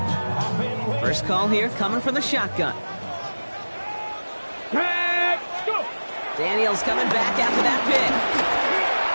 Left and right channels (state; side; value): inverted; both; correlation -1.00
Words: First call here coming from the shotgun. Let's go. Daniels coming back after that pick.